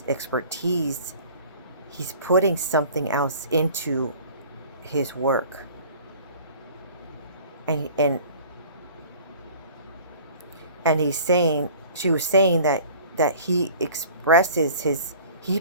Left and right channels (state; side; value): inverted; both; correlation -0.46